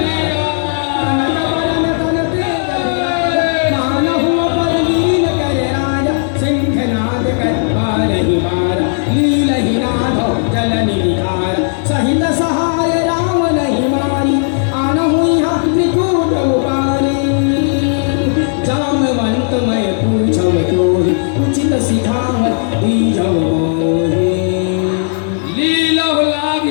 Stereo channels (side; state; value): right; silent; digital silence